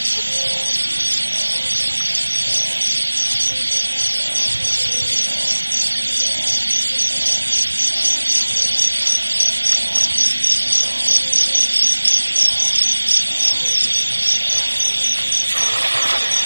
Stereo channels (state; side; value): inverted; both; correlation -1.00